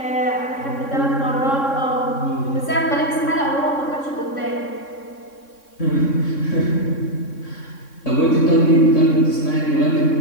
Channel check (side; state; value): right; late; 3.6 ms